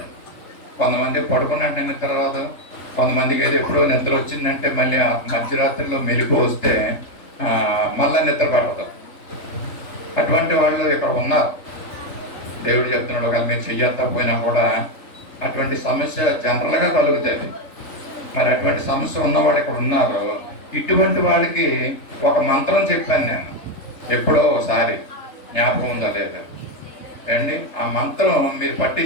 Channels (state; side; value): late; right; 3.6 ms